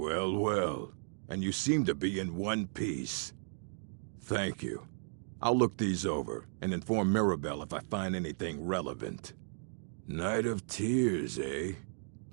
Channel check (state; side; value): silent; left; digital silence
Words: well. And you seem to be in one piece. Thank you. I'll look these over and inform Mirabelle if I find anything relevant. Night of Tears, eh?